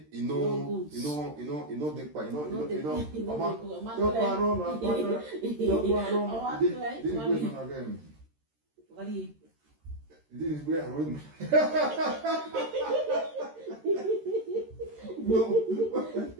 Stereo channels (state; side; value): late; left; 13 ms